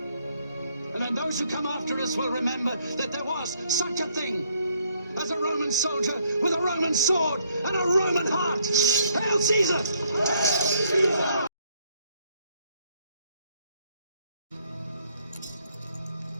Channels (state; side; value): inverted; both; correlation -0.69